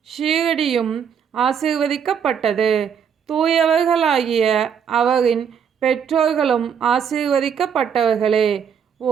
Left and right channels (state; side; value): quieter; left; 7.6 dB